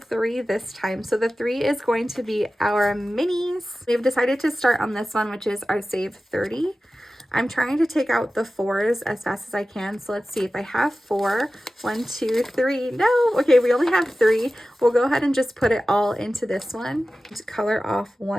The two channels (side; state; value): both; normal; correlation 0.95